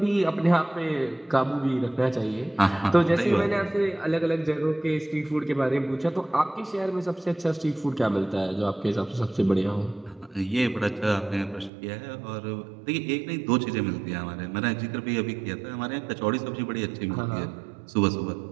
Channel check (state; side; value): drops out; left; at 11.7 s